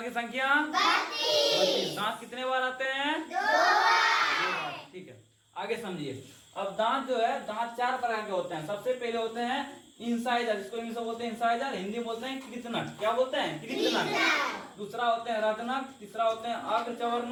की संख्या 32। दांत कितने बार आते हैं? 2 बार। ठीक है, आगे समझिए। अब दांत जो है, दांत 4 प्रकार के होते हैं। सबसे पहले होते हैं इंसाइजर, जिसको इंग्लिश में बोलते हैं इंसाइजर, हिंदी में बोलते हैं कृतनक। क्या बोलते हैं? कृतनक। दूसरा होते हैं रत्नक, तीसरा होते हैं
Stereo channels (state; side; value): identical; both; correlation 1.00